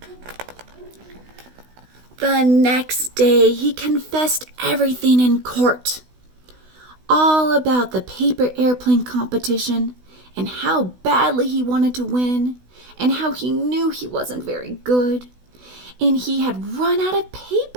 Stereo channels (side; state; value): left; late; 16 ms